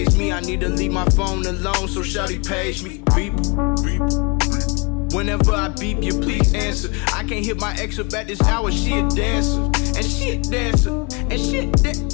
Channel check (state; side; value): quieter; right; 30.6 dB